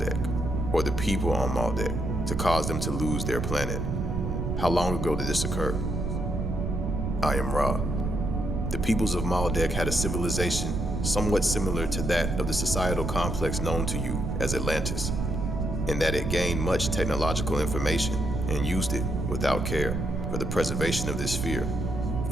or the people on Maldek, to cause them to lose their planet? How long ago did this occur? I am Ra. The peoples of Maldek had a civilization somewhat similar to that of the societal complex known to you as Atlantis, in that it gained much technological information and used it without care for the preservation of this sphere,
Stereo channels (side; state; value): right; noise; rumble, 2 dB below the sound